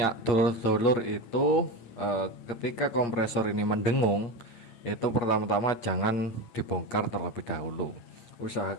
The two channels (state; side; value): late; right; 8.9 ms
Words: dulur-dulur itu, ketika kompresor ini mendengung, itu pertama-tama jangan dibongkar terlebih dahulu.